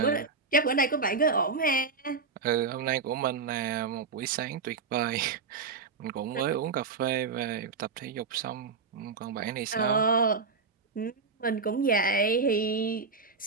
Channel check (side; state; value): left; quieter; 4.7 dB